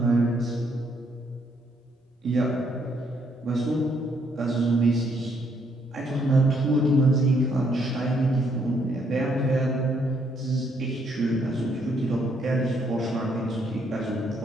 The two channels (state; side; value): normal; both; correlation 0.71